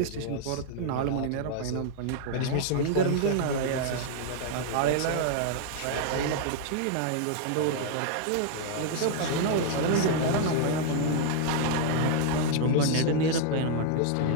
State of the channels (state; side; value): different; both; correlation 0.00